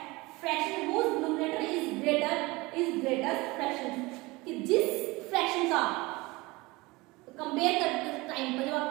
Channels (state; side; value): quieter; left; 22.8 dB